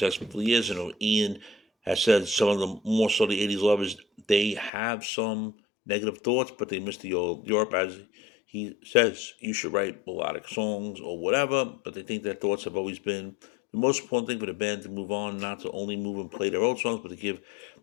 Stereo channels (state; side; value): drops out; right; at 4.7 s